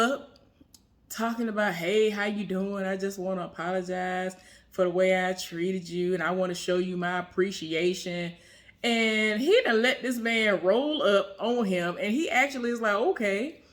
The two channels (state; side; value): identical; both; correlation 1.00